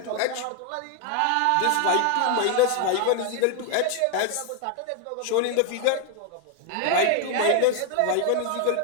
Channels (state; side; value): different; both; correlation 0.00